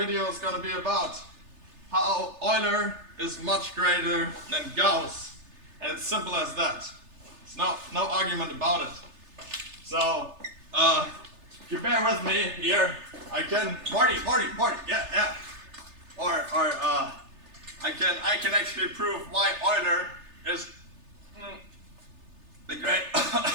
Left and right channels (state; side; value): late; left; 3.3 ms